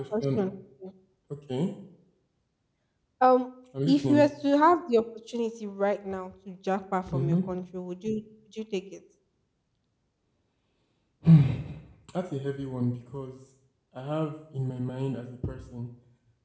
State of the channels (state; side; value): identical; both; correlation 1.00